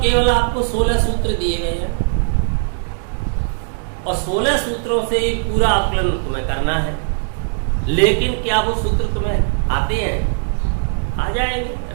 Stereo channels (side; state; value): left; silent; digital silence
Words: केवल आपको 16 सूत्र दिए गए हैं और 16 सूत्रों से पूरा आकलन तुम्हें करना है। लेकिन क्या वो सूत्र तुम्हें आते हैं? आ जाएंगे,